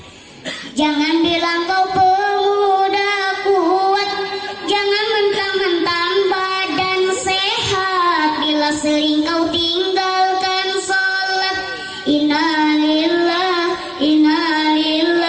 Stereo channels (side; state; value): both; identical; correlation 1.00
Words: Jangan bilang kau pemuda kuat, jangan mentang-mentang badan sehat, bila sering kau tinggalkan sholat. Innalillah,